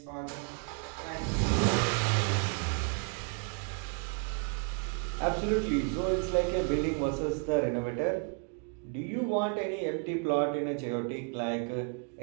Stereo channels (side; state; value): left; quieter; 38.5 dB